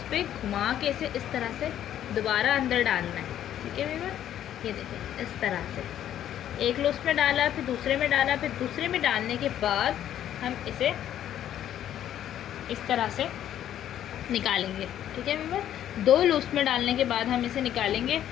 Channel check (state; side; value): quieter; right; 11.1 dB